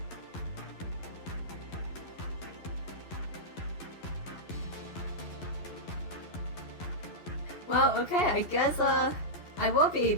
Well, okay, I guess I will be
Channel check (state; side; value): late; right; 11 ms